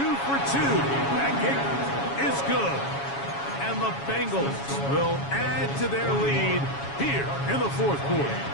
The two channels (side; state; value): right; late; 7.2 ms